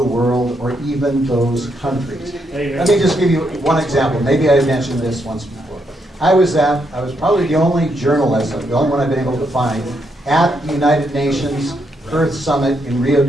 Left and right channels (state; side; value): normal; both; correlation 0.78